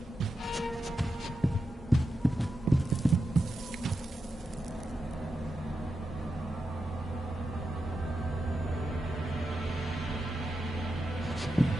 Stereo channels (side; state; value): both; normal; correlation 0.88